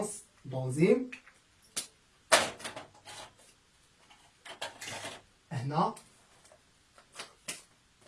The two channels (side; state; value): both; identical; correlation 1.00